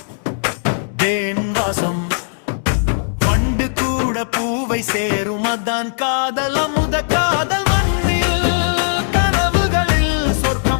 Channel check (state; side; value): silent; right; digital silence